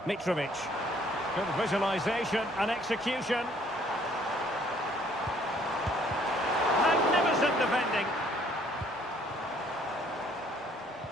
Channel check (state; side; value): normal; both; correlation 0.61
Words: Mitrovic. Good visualisation and execution. Magnificent defending.